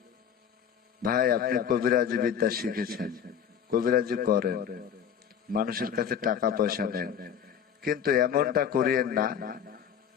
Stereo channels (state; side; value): quieter; right; 8.2 dB